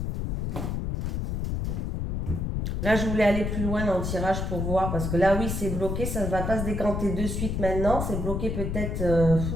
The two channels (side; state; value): left; noise; rumble, 2 dB below the sound